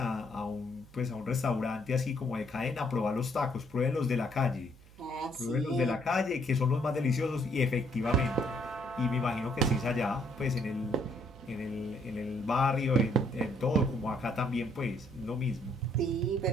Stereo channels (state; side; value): noise; right; hum, 23 dB below the sound